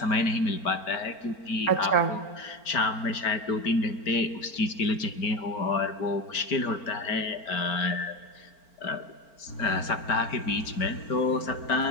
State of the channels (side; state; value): right; late; 4.4 ms